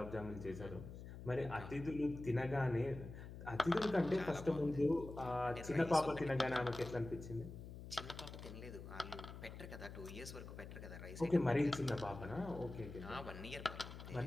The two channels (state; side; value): noise; left; hum, 11 dB below the sound